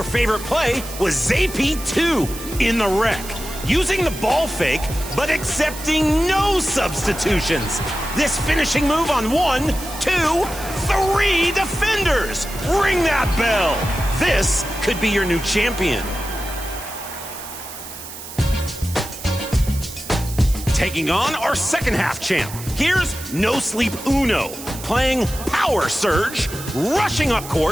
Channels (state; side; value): noise; right; hiss, 12 dB below the sound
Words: favorite play was ZP2 in the wreck, using the ball fake, but accepting no substitutions. This finishing move on 1, 2, 3 defenders. Ring that bell. This could be your new champion. Taking on our second half champ, here's No Sleep Uno, playing Power Surge, rushing up